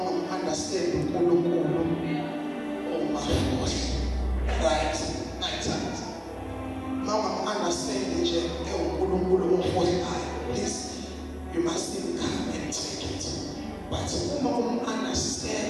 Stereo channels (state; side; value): identical; both; correlation 1.00